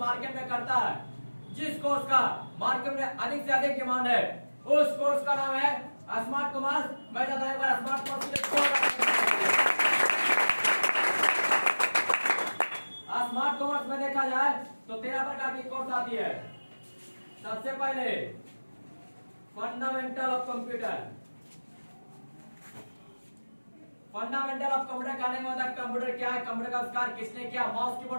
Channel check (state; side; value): inverted; both; correlation -1.00